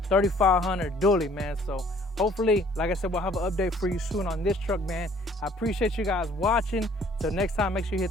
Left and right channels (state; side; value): normal; both; correlation 0.58